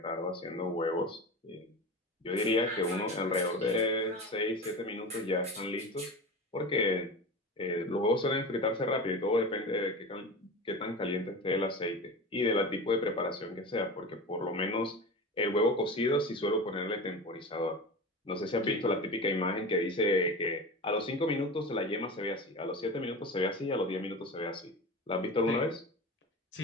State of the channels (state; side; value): normal; both; correlation 0.29